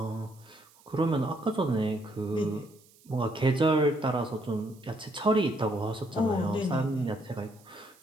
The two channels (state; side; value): noise; right; hiss, 28 dB below the sound